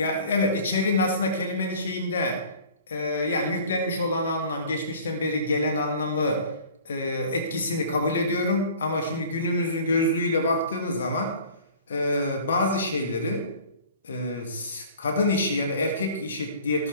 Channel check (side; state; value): both; inverted; correlation -0.47